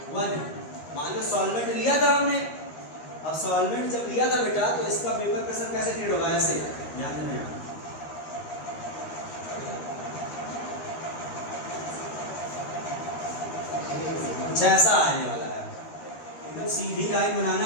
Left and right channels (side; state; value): right; late; 13 ms